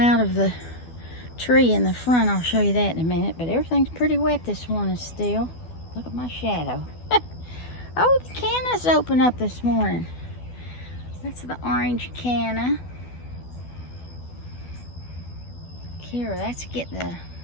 of the tree in the front. I'll show you that in a minute. But everything's pretty wet this morning still. Look at my shadow. Oh, the canna's open up this morning. That's the orange canna. Here, that's getting the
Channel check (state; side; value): late; right; 12 ms